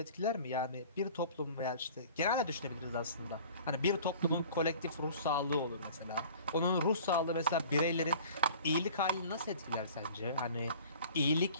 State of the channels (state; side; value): inverted; both; correlation -0.46